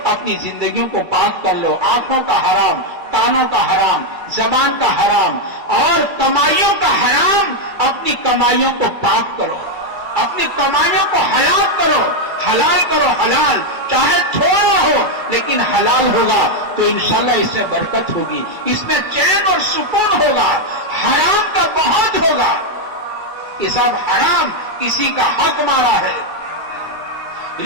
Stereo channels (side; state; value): left; late; 2.3 ms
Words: اپنی زندگیوں کو پاک کر لو. آنکھوں کا حرام، کانوں کا حرام، زبان کا حرام اور کمائیوں کا حرام. اپنی کمائیوں کو پاک کرو، اپنی کمائیوں کو حلال کرو. حلال کرو، حلال چاہے تھوڑا ہو لیکن حلال ہوگا تو انشاءاللہ اس میں برکت ہوگی، اس میں چین اور سکون ہوگا. حرام کا بہت ہوگا کہ صاحب حرام کسی کا حق مارا ہے،